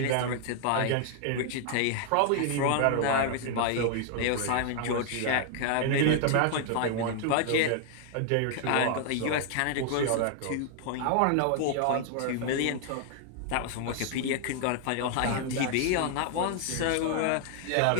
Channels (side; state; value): both; different; correlation 0.00